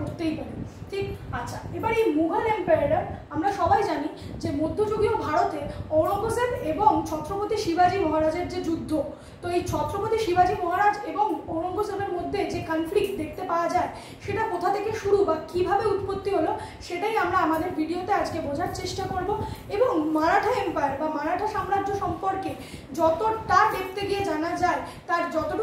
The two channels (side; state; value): both; identical; correlation 1.00